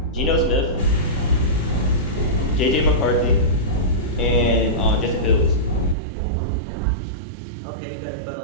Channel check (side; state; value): left; drops out; at 6.0 s